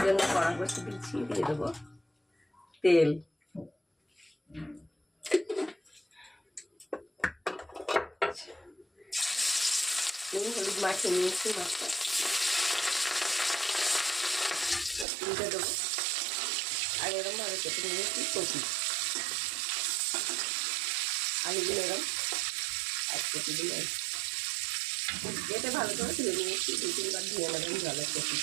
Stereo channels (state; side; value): drops out; left; at 15.1 s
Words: জন্য কড়া বসে দিচ্ছি, দিয়ে দেবো তেল। নুন হলুদ মাখিয়ে নিয়েছি, মাছটা দিয়ে দেবো। আর এরকম ভাবে কেটে নিয়েছি কপি, আলুগুলো এরকম এক কেটে দিলে যেতে ভালো করে ধুয়ে নিয়েছি, 2-3 বার ধুয়ে নেবেন জলের কপি।